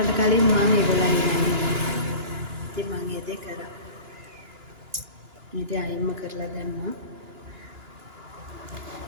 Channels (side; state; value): left; late; 2.9 ms